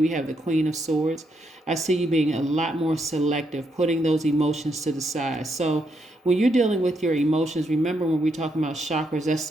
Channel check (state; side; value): normal; both; correlation 0.78